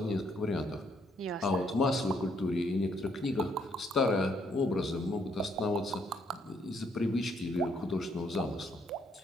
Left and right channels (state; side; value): normal; both; correlation 0.71